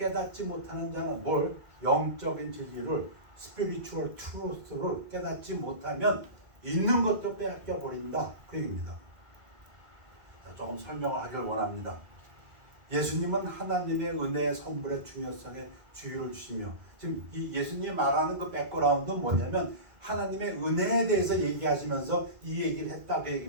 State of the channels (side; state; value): left; late; 2.2 ms